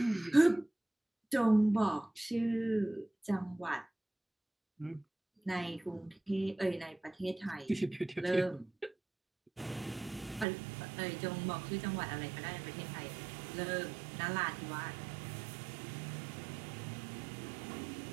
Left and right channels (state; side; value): drops out; left; at 10.5 s